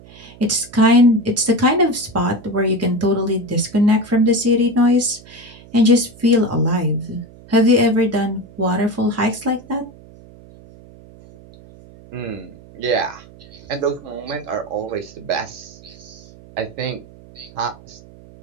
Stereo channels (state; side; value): noise; right; hum, 22 dB below the sound